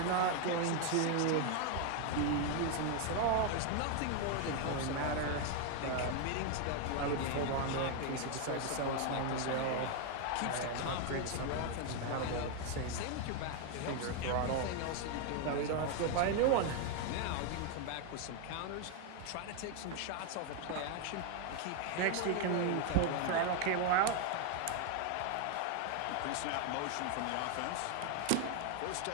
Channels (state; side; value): different; both; correlation 0.01